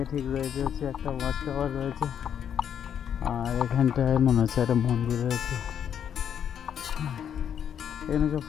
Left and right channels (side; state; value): right; quieter; 8.8 dB